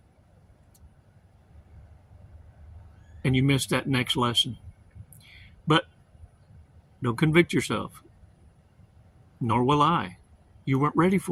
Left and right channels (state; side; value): identical; both; correlation 1.00